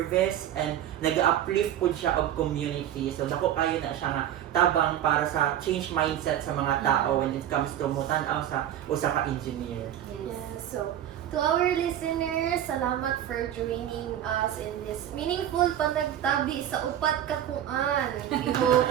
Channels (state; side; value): quieter; left; 11.2 dB